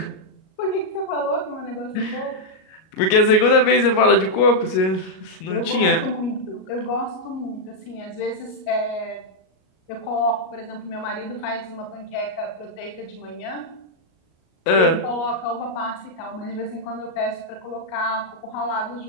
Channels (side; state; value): right; late; 38 ms